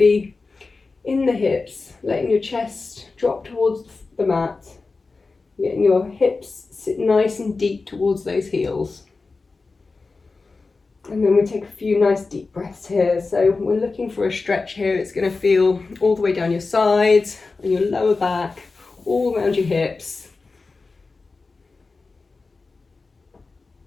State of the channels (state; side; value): quieter; right; 4.0 dB